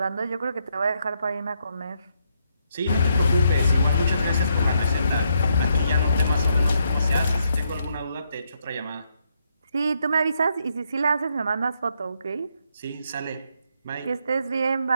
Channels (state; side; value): inverted; both; correlation -0.76